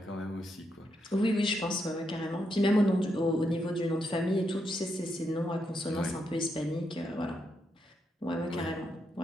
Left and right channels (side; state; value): both; normal; correlation 0.81